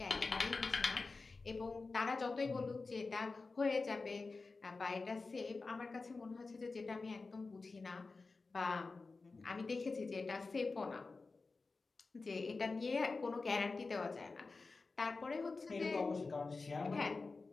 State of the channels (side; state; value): right; quieter; 3.9 dB